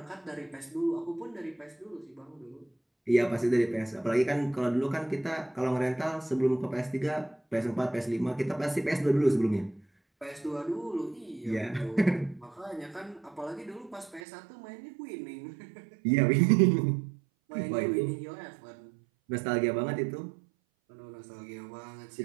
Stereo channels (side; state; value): left; drops out; at 14.2 s